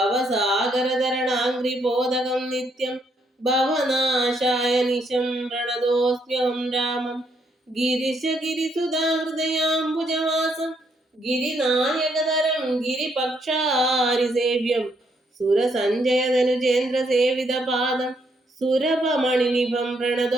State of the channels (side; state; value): both; normal; correlation 0.73